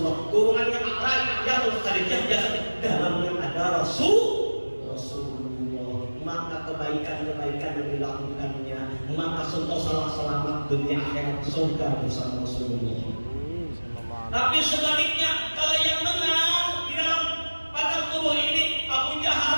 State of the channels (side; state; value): both; inverted; correlation -1.00